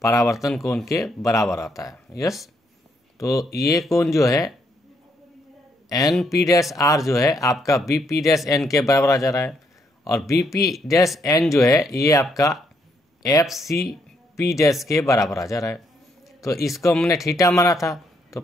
परावर्तन कोण के बराबर आता है। यस, तो ये कोण जो है एन पी डैश आर जो है आपका बी पी डैश एन के बराबर आ जा रहा है, और बी पी डैश एन जो है ये आपका एफ सी पी डैश के बराबर आ जा रहा है। तो इसको हमने थीटा माना था तो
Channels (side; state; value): both; normal; correlation 0.74